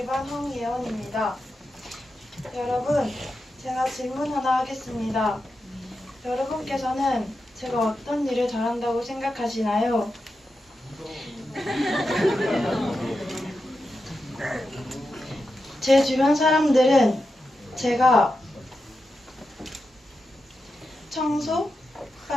황예원입니다. 여러분, 제가 질문 하나 하겠습니다. 여러분께서는 제가 어떤 일을 잘한다고 생각하시나요? 제 주변 사람들은 제가 청소,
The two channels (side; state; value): both; normal; correlation 0.89